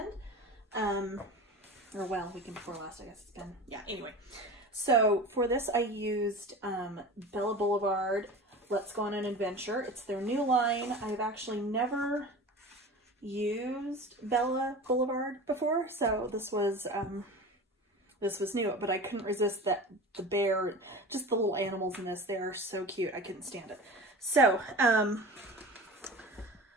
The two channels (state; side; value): normal; both; correlation 0.34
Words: Weekend before last, I guess it's been. Yeah, anyway. So for this I used Bella Boulevard, Let's Go on an Adventure. It's their new line. I've actually never used Bella Boulevard before, so this was new, but I couldn't resist that the bear, just the little animals in this, they are so cute. I couldn't stand it. So,